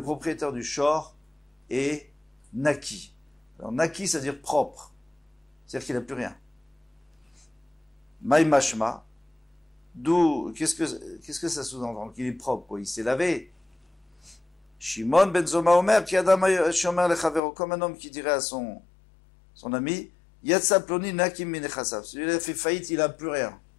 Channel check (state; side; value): drops out; right; at 17.4 s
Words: propriétaire du shor est naki. Alors naki, ça veut dire propre. C'est-à-dire qu'il n'a plus rien. Maï mashma, d'où, qu'est-ce que ça sous-entend? Qu'il est propre, quoi. Il s'est lavé. Shimon ben Zoma Omer, comme un homme qui dirait à son ami, Yatsa ploni nakim minechasav. Celui-là fait faillite, il n'a plus rien.